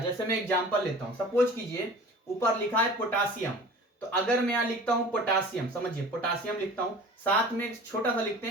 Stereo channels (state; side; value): normal; both; correlation 0.42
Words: मैं एग्जांपल लेता हूं, सपोज कीजिए ऊपर लिखा है पोटासियम, तो अगर मैं यहां लिखता हूं पोटासियम, समझिए पोटासियम लिखता हूं, साथ में एक छोटा सा लिखते